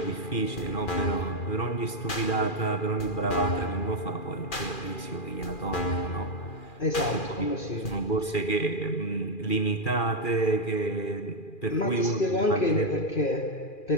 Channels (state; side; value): late; right; 2.4 ms